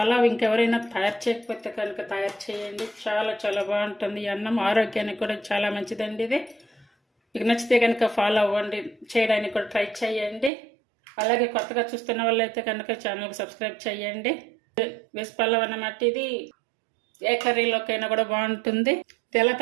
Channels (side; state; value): left; drops out; at 10.5 s